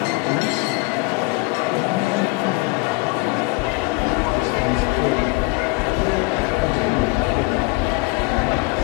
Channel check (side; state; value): right; quieter; 26.0 dB